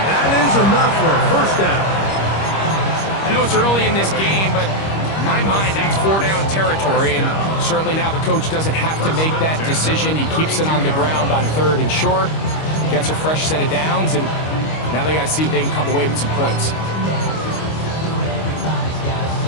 that is enough for a 1st down. I know it's early in this game, but in my mind, that's 4-down territory. And certainly now the coach doesn't have to make that decision. He keeps it on the ground on 3rd and short. Gets a fresh set of downs, and now they got to see if they can come away with some points.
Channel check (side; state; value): right; late; 25 ms